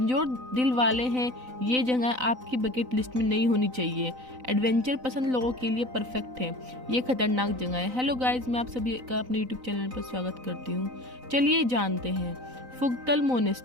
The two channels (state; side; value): late; left; 3.9 ms